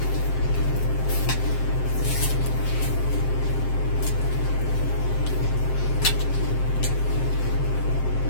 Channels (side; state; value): right; late; 7.6 ms